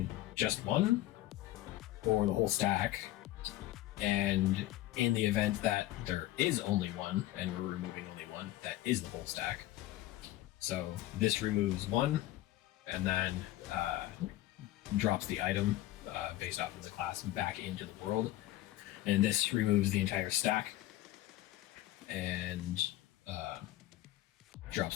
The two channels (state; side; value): quieter; right; 15.5 dB